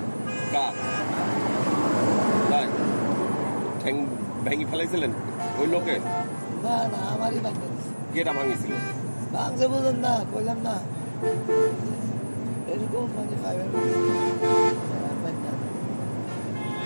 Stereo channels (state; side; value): inverted; both; correlation -1.00